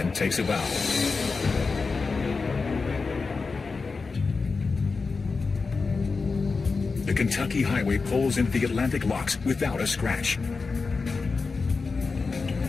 takes a bow. The Kentucky highway pulls into the Atlantic locks without a scratch.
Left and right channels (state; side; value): quieter; right; 4.4 dB